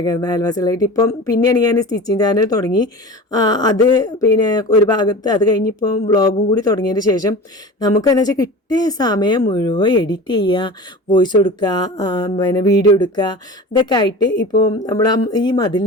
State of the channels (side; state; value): both; normal; correlation 0.35